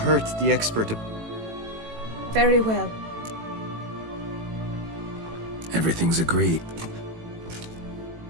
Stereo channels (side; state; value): left; late; 18 ms